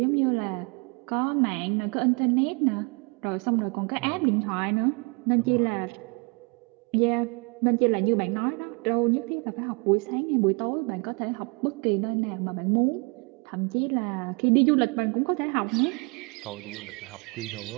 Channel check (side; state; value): left; quieter; 31.7 dB